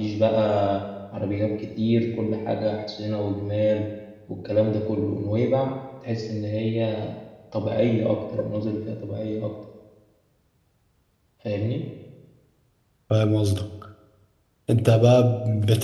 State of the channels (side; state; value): both; identical; correlation 1.00